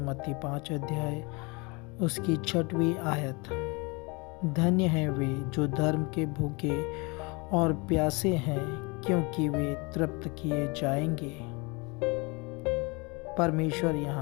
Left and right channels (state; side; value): quieter; right; 28.3 dB